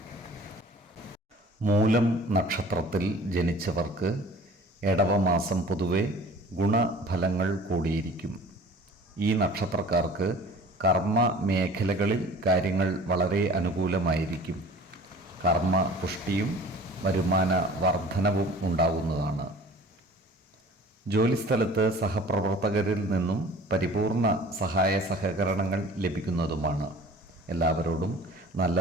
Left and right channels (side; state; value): both; normal; correlation 0.46